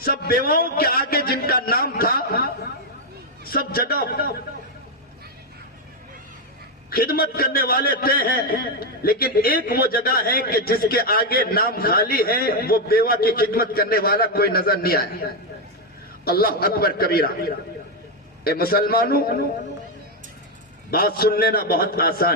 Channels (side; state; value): both; normal; correlation 0.04